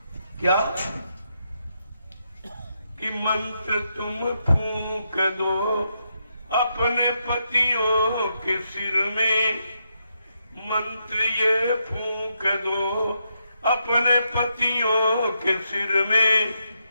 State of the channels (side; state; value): both; inverted; correlation -0.82